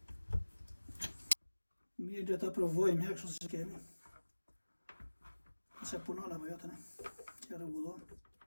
Mirë dhe ta provojmë kështu si kemi. Nëse punon apo jo tani. Që rregullon.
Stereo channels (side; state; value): both; inverted; correlation -1.00